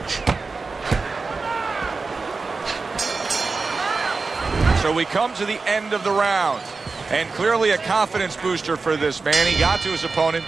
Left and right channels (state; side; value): quieter; left; 4.2 dB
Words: So we come to the end of the round. And clearly a confidence booster for this man. He got to his opponent.